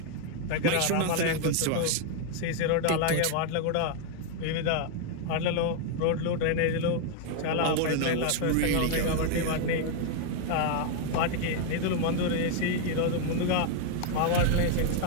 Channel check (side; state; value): both; different; correlation 0.00